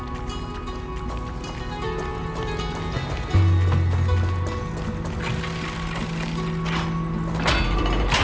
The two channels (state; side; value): identical; both; correlation 1.00